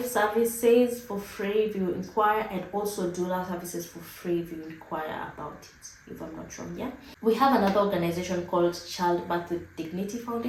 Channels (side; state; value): both; identical; correlation 1.00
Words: services for free if you inquire, and also doula services for free if you inquire about it, if I'm not wrong. Yeah, we have another organization called Childbirth with Dignity